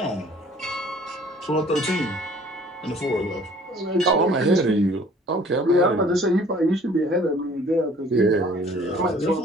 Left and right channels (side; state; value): both; normal; correlation 0.53